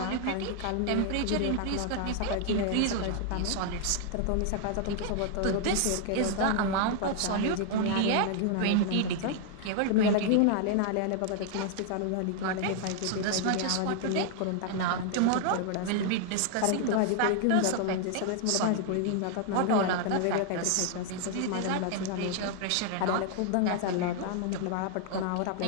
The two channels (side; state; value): both; different; correlation 0.00